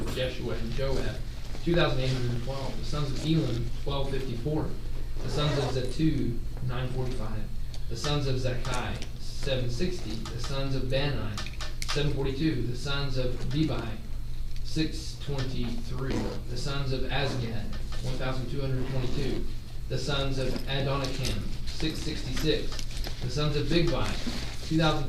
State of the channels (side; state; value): both; identical; correlation 1.00